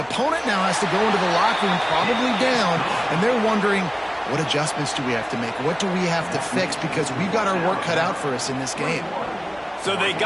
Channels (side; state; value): both; identical; correlation 1.00